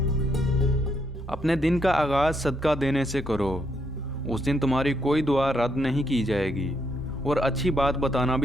अपने दिन का आगाज़ सदका देने से करो, उस दिन तुम्हारी कोई दुआ रद्द नहीं की जाएगी, और अच्छी बात बताना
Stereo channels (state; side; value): normal; both; correlation 0.76